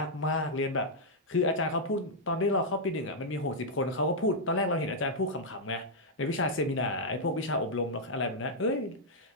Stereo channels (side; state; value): both; normal; correlation -0.05